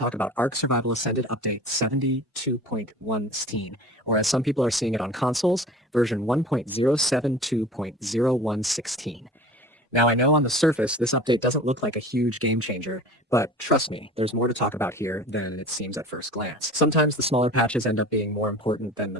about Ark Survival Ascended Update 72.1, or as some people are seeing it on consoles, version 1.072.0116. Now, I know on the surface this update doesn't look like a huge game changer, but trust me, there's more to talk about here than it seems at first glance. Sometimes the smaller patches end up being more important than the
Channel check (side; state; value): both; normal; correlation 0.40